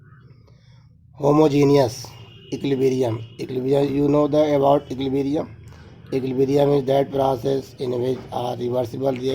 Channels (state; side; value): identical; both; correlation 1.00